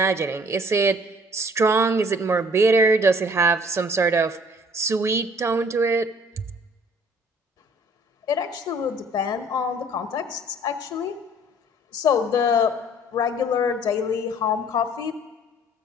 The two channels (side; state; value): both; normal; correlation 0.55